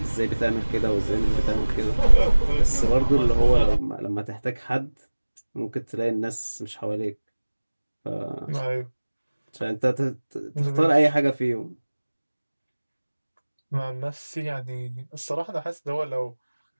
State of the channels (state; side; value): inverted; both; correlation -1.00